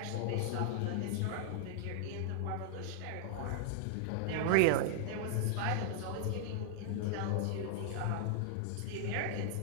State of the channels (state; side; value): different; both; correlation -0.01